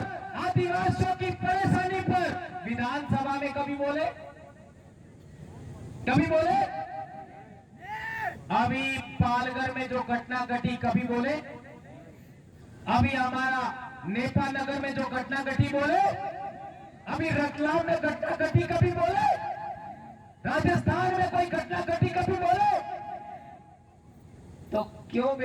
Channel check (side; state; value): both; identical; correlation 1.00